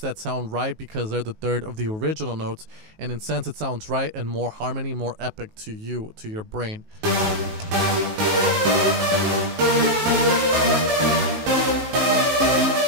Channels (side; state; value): left; late; 19 ms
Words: sound right because they're the third of the original notes, and in sense it sounds right and more harmony, more epic to you, to your brain.